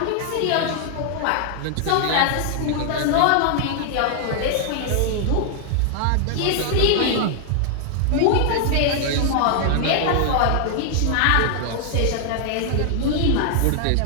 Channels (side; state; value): both; different; correlation -0.01